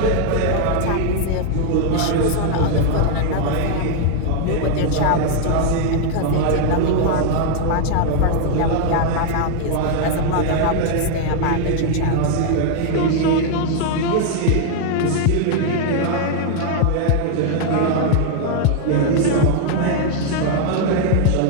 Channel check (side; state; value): both; different; correlation 0.00